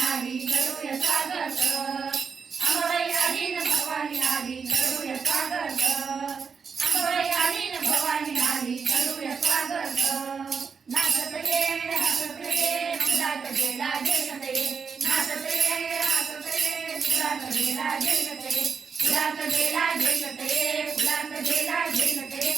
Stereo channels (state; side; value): quieter; left; 5.8 dB